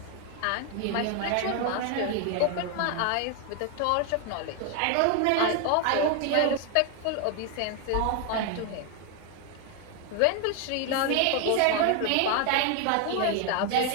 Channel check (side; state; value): both; different; correlation 0.01